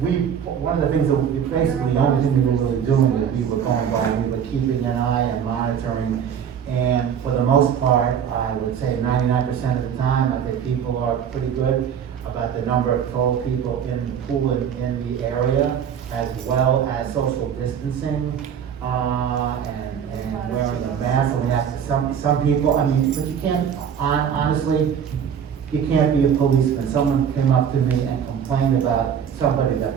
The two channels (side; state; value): left; quieter; 8.1 dB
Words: one of the things that basically the only thing we were really doing is we were going by, we were keeping an eye and monitoring, and for the most part, I would say 99% of the time, I think people are pretty good about the number of total people in the pool in the area, as well as social distancing, and wearing a mask, and we have to, some people, I mean, but you can't, honestly, you can't be a policeman. Someone came up to me and complained about somebody